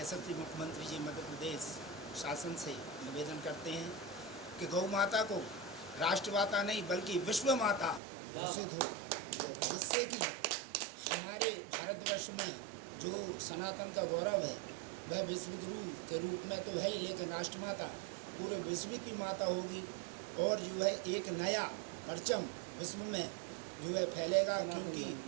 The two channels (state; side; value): drops out; left; at 8.0 s